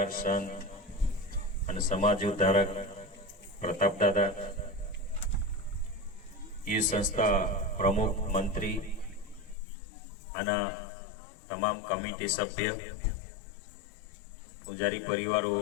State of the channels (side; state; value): right; drops out; at 9.6 s